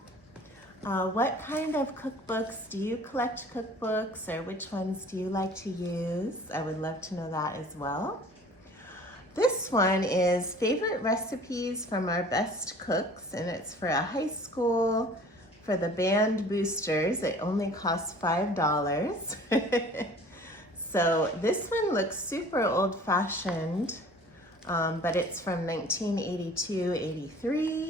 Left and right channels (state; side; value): normal; both; correlation 0.48